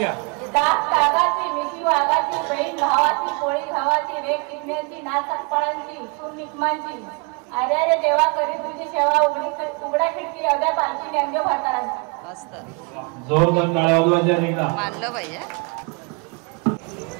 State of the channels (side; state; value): left; quieter; 33.3 dB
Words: कागाची मिठी वाघाची, बहीण भावाची, पोळी भावाची, रेख किडण्याची, नाचक फळांची, सून निकमांची. अरे अरे देवा करी तुझी सेवा, उघडा खिडकी अवघ्या पालखी नेमके भरतारांची. मस्त. जोरदार टाळ्या वाजवायच्या एकदा. मानलं पाहिजे.